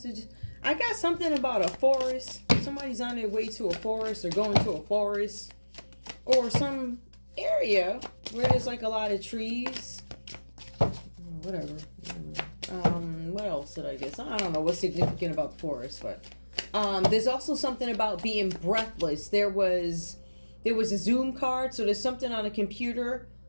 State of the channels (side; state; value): both; inverted; correlation -1.00